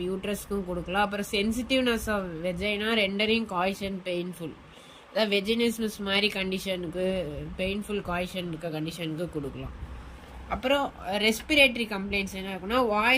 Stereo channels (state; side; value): identical; both; correlation 1.00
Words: யூட்ரஸ்க்கும் கொடுக்கலாம். அப்புறம் sensitiveness of vagina rendering coition painful, அதாவது வெஜினிஸ்மஸ் மாதிரி கண்டிஷனுக்கு, பெயின்ஃபுல் காய்ஷன் இருக்க கண்டிஷனுக்கு கொடுக்கலாம். அப்புறம் ரெஸ்பிரேட்டரி கம்ப்ளைண்ட்ஸ் என்ன இருக்குன்னா